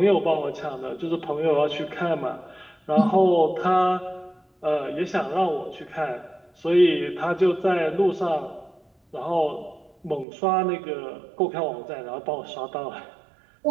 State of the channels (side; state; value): left; drops out; at 10.2 s